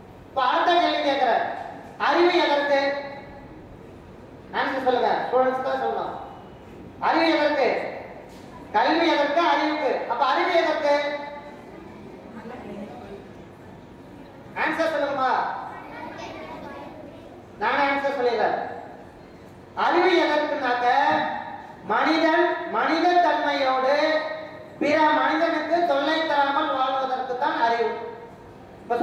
இப்ப அடுத்த கேள்வி கேட்கிற, அறிவு எதற்கு? ஆன்சர் சொல்லுங்க. ஸ்டூடெண்ட்ஸ் தான் சொல்லணும். அறிவு எதற்கு? கல்வி எதற்கு? அறிவுக்கு. அப்ப அறிவு எதற்கு? ஆன்சர் சொல்லுங்கம்மா. நான் ஆன்சர் சொல்லிடுறேன். அறிவு எதற்குனாக்க மனித தன்மையோடு பிற மனிதனுக்கு தொல்லை தராமல் வாழ்வதற்கு தான் அறிவு. இப்ப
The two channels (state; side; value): identical; both; correlation 1.00